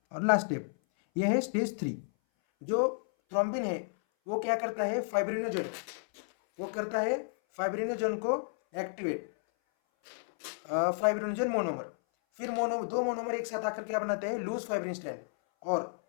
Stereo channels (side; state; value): right; silent; 56 dB below the other